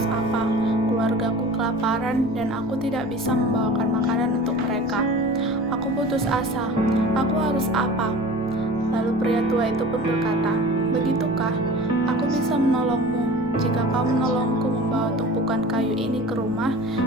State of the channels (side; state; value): left; noise; rumble, 20 dB below the sound